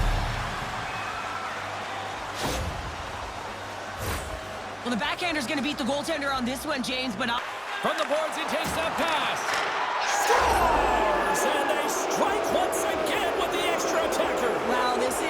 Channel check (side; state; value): both; identical; correlation 1.00